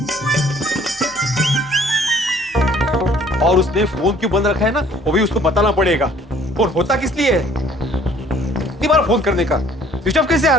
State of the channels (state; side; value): normal; both; correlation 0.57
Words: और उसने फोन क्यों बंद रखा है ना, वो भी उसको बताना पड़ेगा। फोन होता किस लिए है, इतनी बार फोन करने का। स्विच ऑफ कैसे आ